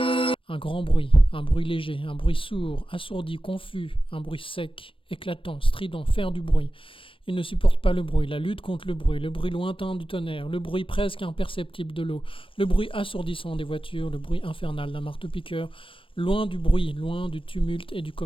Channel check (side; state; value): right; late; 0.25 ms